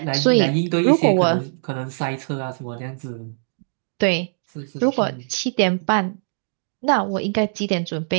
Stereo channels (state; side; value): silent; left; digital silence